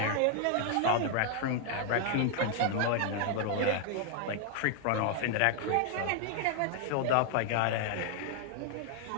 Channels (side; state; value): both; different; correlation 0.00